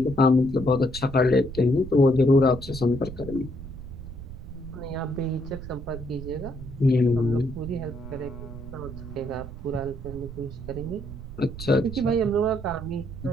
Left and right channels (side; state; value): right; noise; rumble, 11 dB below the sound